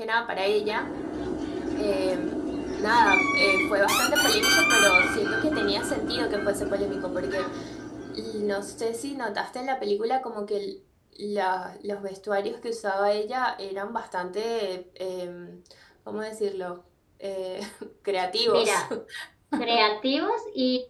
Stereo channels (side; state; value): both; identical; correlation 1.00